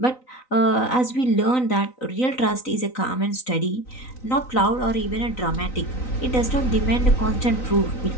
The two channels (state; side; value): late; right; 3.9 ms